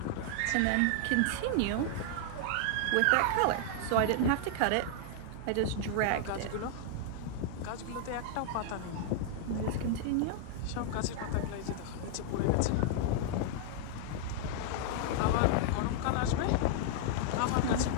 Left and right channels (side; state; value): both; different; correlation 0.00